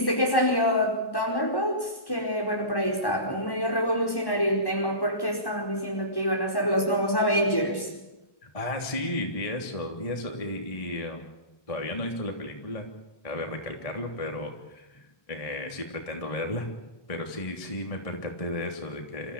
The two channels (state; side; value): late; right; 1.1 ms